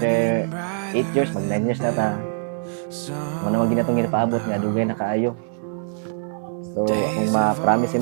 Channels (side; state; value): left; silent; digital silence